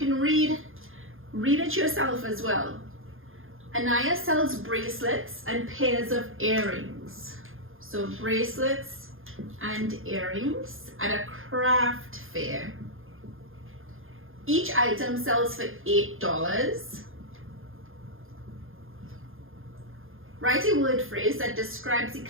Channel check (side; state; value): left; late; 0.60 ms